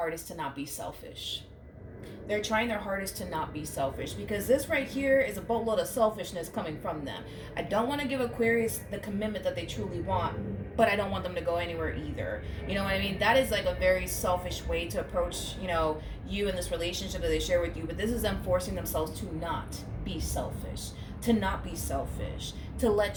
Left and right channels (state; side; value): identical; both; correlation 1.00